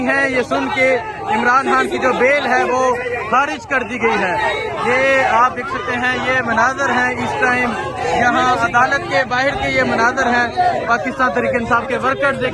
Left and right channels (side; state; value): both; identical; correlation 1.00